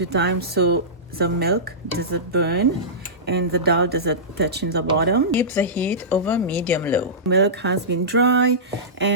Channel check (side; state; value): both; normal; correlation -0.19